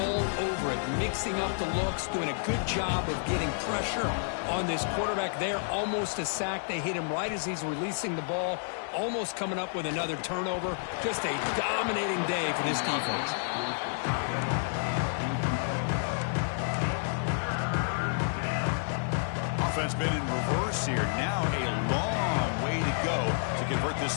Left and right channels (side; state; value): right; silent; digital silence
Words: over it, mixing up the looks, doing a good job of getting pressure on this quarterback there. Almost a sack. They hit him right as he's releasing the ball. Almost coming up with another turnover. Just a dominating day for this defense. Offense been in reverse here. Now a long way to go to convert this